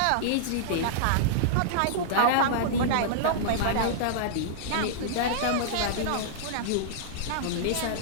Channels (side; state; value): both; different; correlation -0.02